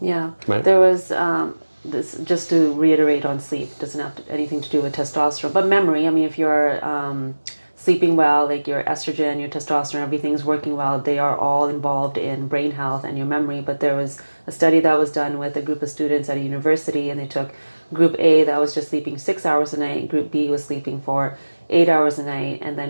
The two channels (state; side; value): inverted; both; correlation -1.00